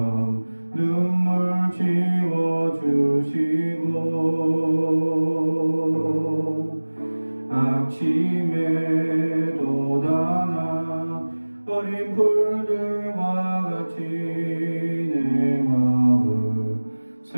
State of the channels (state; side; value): inverted; both; correlation -1.00